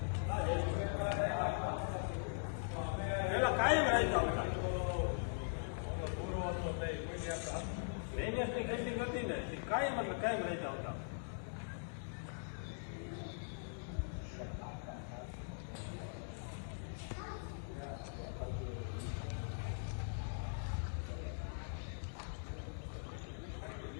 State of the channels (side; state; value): right; silent; digital silence